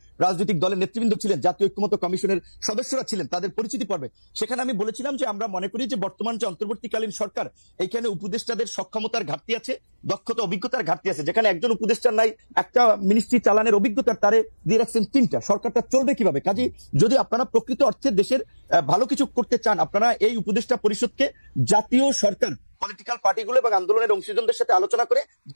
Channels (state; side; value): inverted; both; correlation -1.00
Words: রাজনৈতিক দলের নেতৃবৃন্দ ছিলেন, জাতীয় ঐক্যমত্য কমিশনের সদস্যরা ছিলেন, তাদের পরিচিতি পর্বে সেখানে আমি বলেছিলাম যে আমরা মনে করি যে বর্তমান যে অন্তর্বর্তীকালীন সরকার, এইখানে উপদেষ্টাদের সক্ষমতার ঘাটতি আছে, দক্ষতা অভিজ্ঞতার ঘাটতি আছে। যেখানে একজন উপদেষ্টার নাই একটা মিনিস্ট্রি চালানোর অভিজ্ঞতার, তারে দিয়ে রাখছেন 3টা, সরকারটা চলবে কিভাবে? কাজে যদি আপনারা প্রকৃত অর্থে দেশের ভালো কিছু করতে চান, আপনারা এই উপদেষ্টা পরিষদকে জাতীয় সরকার, পলিটিক্যাল পার্টিগুলো এবং আন্দোলনের অংশীজনদের সাথে আলোচনা করে